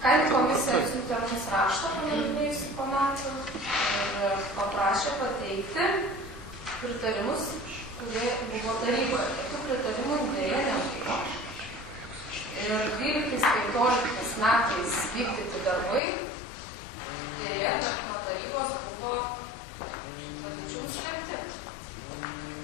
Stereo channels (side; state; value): right; drops out; at 16.0 s